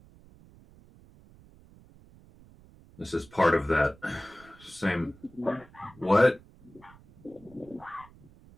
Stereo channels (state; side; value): noise; right; rumble, 24 dB below the sound